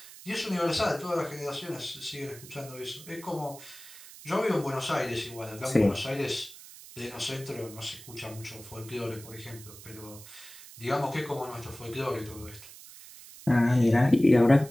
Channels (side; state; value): right; noise; hiss, 17 dB below the sound